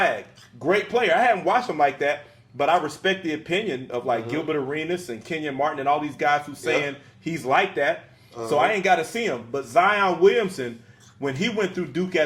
Great player. I haven't watched him like that, but I respect the opinion of like Gilbert Arenas and Kenyon Martin and all these guys who saying he's like that. So I ain't got to see him. But Zion Williamson, when he went through Duke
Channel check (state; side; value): identical; both; correlation 1.00